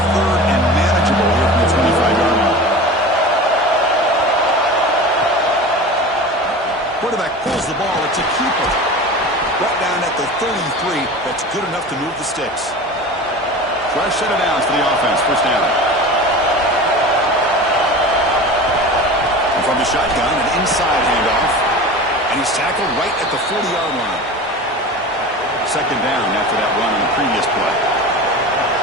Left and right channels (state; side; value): normal; both; correlation 0.34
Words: third and manageable here from the 25-yard line. Quarterback pulls the ball. It's a keeper. Brought down at the 33. That's good enough to move the sticks. Fresh set of downs for the offense. First down. And from the shotgun, an inside handoff. And he's tackled right at the 40-yard line. Second down after that run on the previous play.